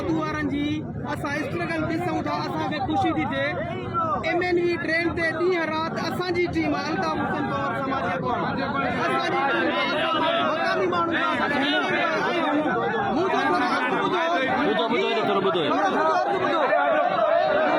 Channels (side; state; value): both; identical; correlation 1.00